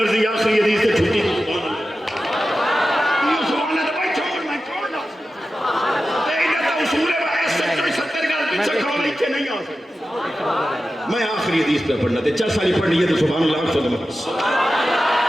آخری حدیث سے چھٹی سبحان اللہ بھائی چھوڑ میں چھوڑ نہ نہیں آ سکتا میں آخری حدیث پہ پڑھنا تھے 4 سالی پڑھنی ہے تو سبحان اللہ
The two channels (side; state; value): both; normal; correlation 0.93